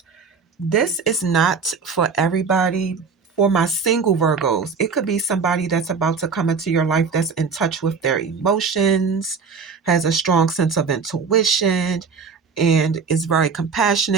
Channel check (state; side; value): quieter; left; 5.4 dB